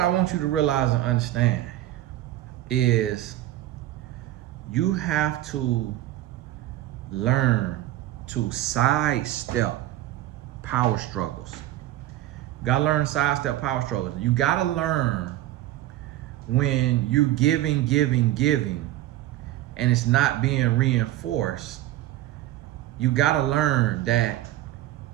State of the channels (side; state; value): left; quieter; 14.7 dB